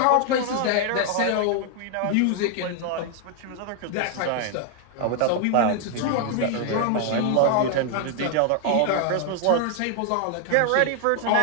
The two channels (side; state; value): both; different; correlation 0.00